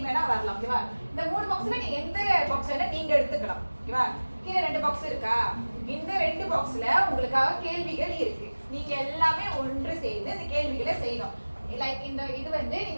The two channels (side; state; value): both; inverted; correlation -1.00